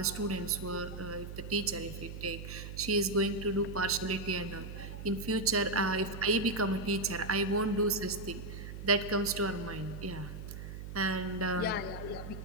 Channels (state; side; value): noise; right; hum, 9 dB below the sound